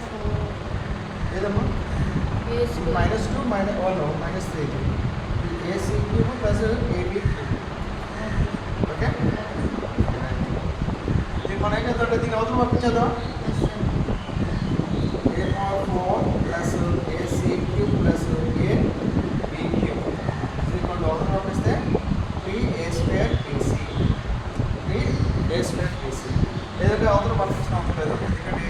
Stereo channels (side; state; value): both; identical; correlation 1.00